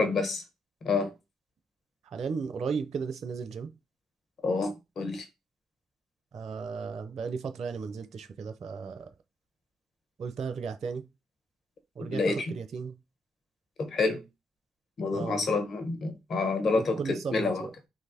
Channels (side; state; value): both; normal; correlation 0.76